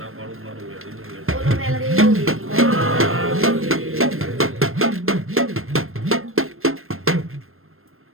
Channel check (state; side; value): late; left; 0.61 ms